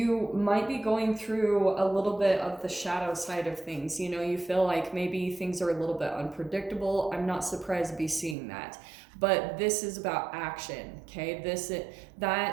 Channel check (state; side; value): drops out; left; at 8.3 s